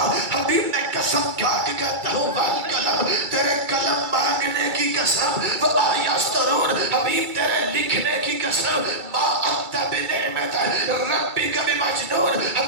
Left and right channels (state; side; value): late; left; 2.3 ms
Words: حبیب نے قسم کھا کے کہتا ہوں والقلم، تیرے قلم مانگنے کی قسم، وما یسطرون، حبیب تیرے لکھنے کی قسم، ما انت بنعمت ربک بمجنون،